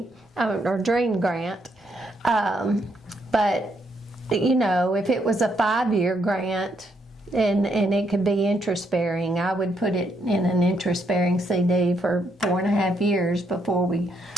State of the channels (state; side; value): normal; both; correlation 0.75